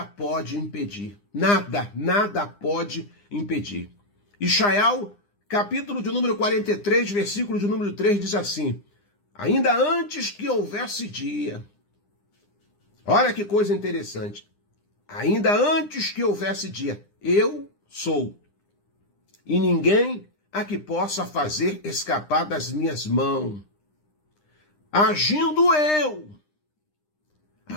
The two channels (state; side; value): late; right; 9.9 ms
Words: pode impedir. Nada pode impedir. Ishaiah, capítulo de número 43, versículo de número 3, diz assim, ainda antes que houvesse dia, olha que coisa interessante, ainda antes que houvesse dia, eu sou. e ninguém a que possa fazer escapar das minhas mãos. Agindo eu,